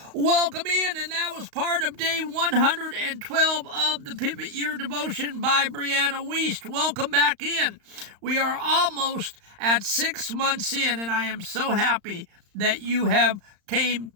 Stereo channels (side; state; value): left; late; 35 ms